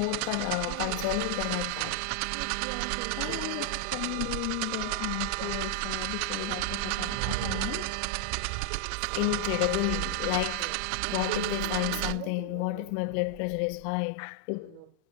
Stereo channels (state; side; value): different; both; correlation 0.00